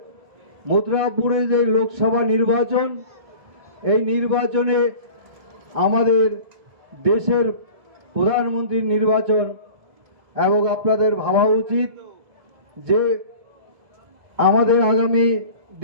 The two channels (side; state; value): left; late; 1.7 ms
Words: মথুরাপুরে যে লোকসভা নির্বাচন, এই নির্বাচনে আমাদের দেশের প্রধানমন্ত্রীর নির্বাচন, এবং আপনাদের ভাবা উচিত যে আমাদের আগামী